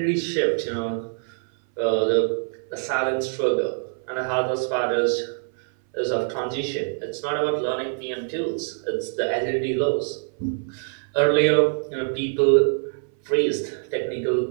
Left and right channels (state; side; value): silent; left; 59 dB below the other